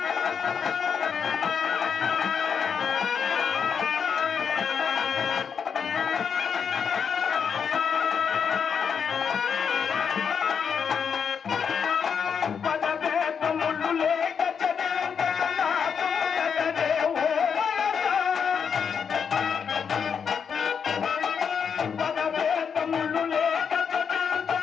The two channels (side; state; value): right; quieter; 6.7 dB